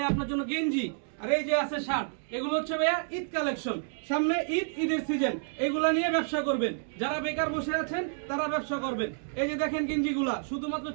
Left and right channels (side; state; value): left; silent; digital silence